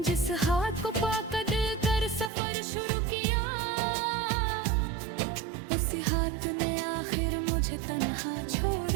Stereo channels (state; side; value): drops out; left; at 2.3 s